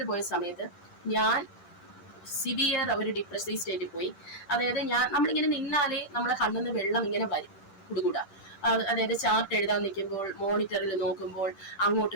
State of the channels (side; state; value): right; late; 10 ms